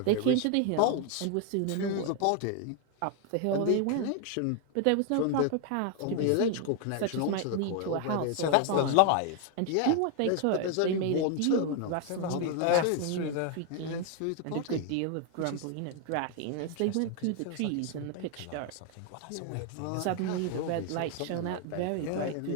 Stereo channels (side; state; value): both; different; correlation 0.01